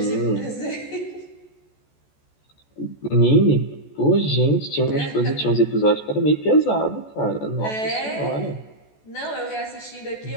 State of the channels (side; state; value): right; late; 14 ms